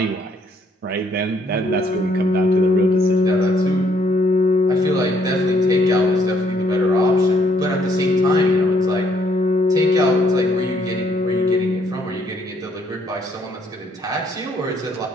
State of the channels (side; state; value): both; normal; correlation 0.68